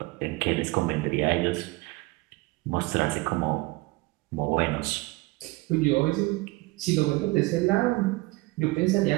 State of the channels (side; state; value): left; quieter; 22.6 dB